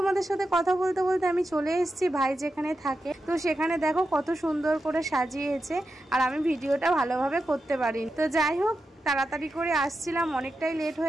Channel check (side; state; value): both; normal; correlation 0.89